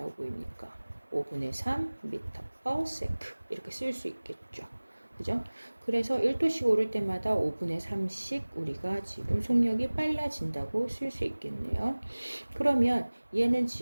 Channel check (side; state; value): both; inverted; correlation -1.00